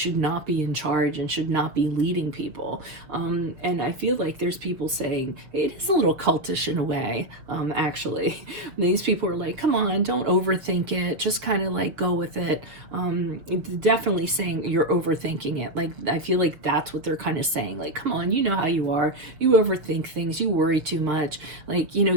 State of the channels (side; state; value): left; late; 6.4 ms